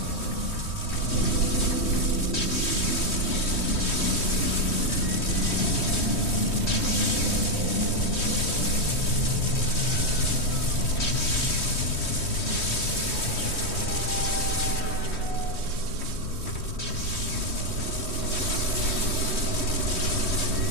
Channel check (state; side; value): late; right; 3.1 ms